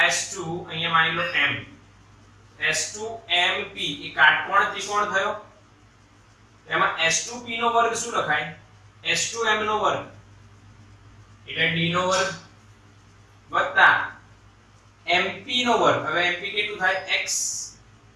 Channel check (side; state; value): both; identical; correlation 1.00